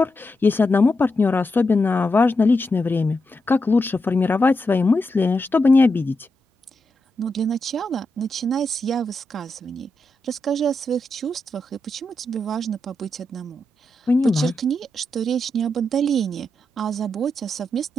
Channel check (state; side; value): normal; both; correlation 0.85